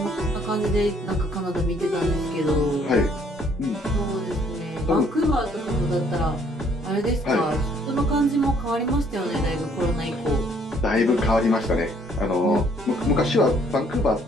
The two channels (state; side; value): normal; both; correlation 0.63